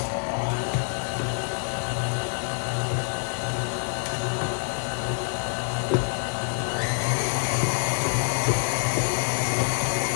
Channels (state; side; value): silent; right; 61 dB below the other